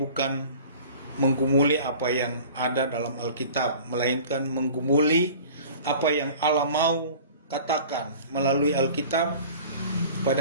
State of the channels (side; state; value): both; inverted; correlation -0.43